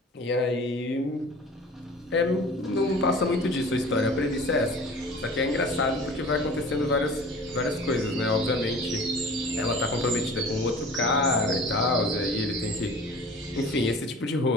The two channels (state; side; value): normal; both; correlation 0.42